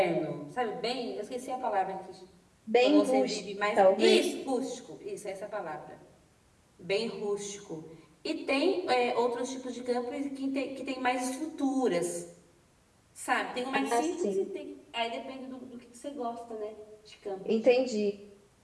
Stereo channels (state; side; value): identical; both; correlation 1.00